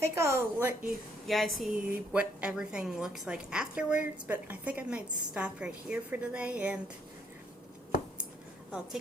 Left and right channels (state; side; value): normal; both; correlation 0.70